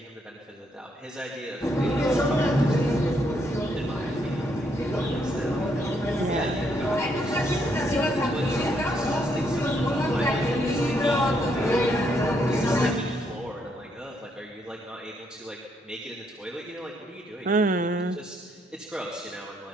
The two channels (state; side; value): normal; both; correlation 0.74